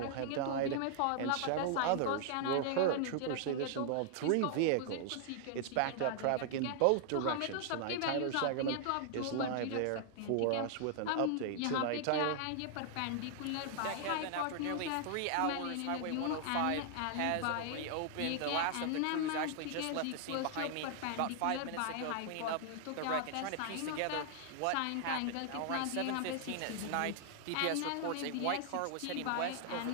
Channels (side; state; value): both; different; correlation 0.00